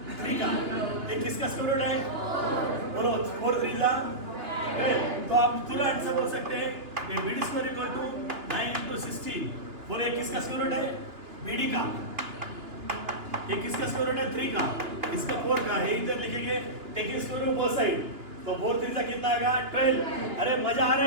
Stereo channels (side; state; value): left; late; 2.9 ms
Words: 3 का। ये किसका स्क्वायर रूट है? बोलो 4 3 जा। तो आप पूरा आंसर बोल सकते हैं कि BD square equal to 9 into 16। बोले ये किसका स्क्वायर रूट है? BD का। ये किसका स्क्वायर रूट है? 3 का। इसका 4 का है, इधर लिखेंगे taking square root both side. तो 4 3 कितना आएगा? 12। अरे मजा आ रहा